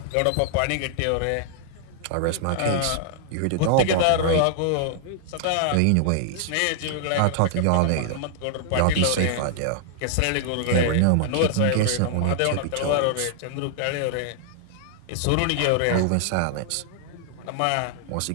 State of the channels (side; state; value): both; different; correlation -0.01